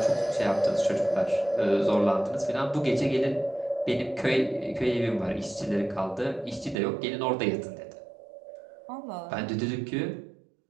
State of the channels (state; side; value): drops out; left; at 6.8 s